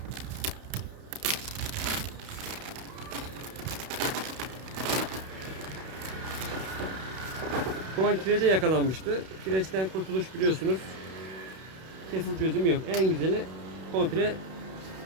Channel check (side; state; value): left; late; 32 ms